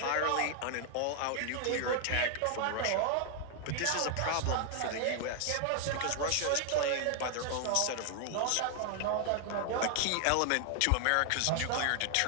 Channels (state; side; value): different; both; correlation 0.00